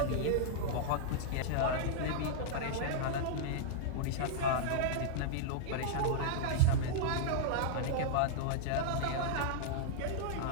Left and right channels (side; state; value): both; different; correlation -0.02